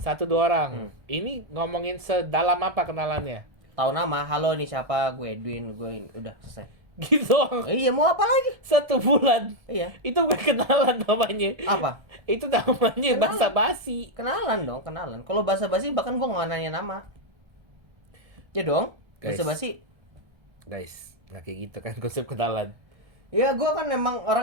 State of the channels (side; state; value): left; late; 1.3 ms